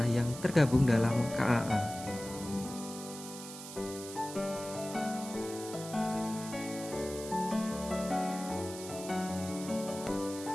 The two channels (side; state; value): right; noise; hiss, 12 dB below the sound